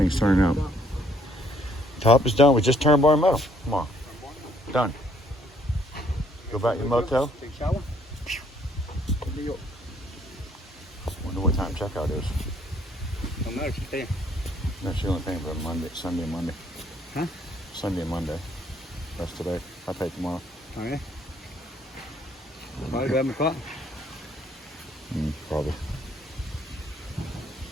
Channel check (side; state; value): both; normal; correlation 0.65